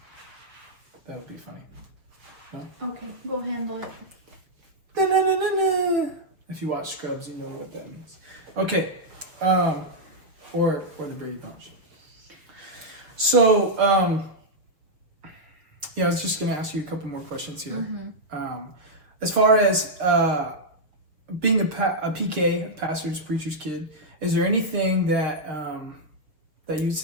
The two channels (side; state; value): left; late; 6.3 ms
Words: That would be funny. Okay, go handle it. Da-na-na-na-na. If you watch Scrubs, you know what that means. Okay. Or the Brady Bunch. So, I was just going to ask you a couple more questions here. As far as being a PK, a pastor's, preacher's kid, is there anything that that you'd